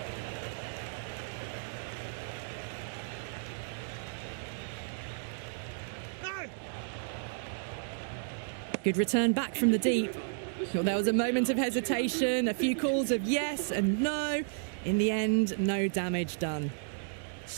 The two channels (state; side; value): silent; left; 56 dB below the other